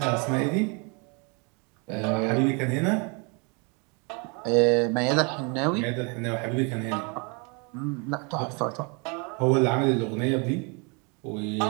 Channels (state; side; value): quieter; left; 33.0 dB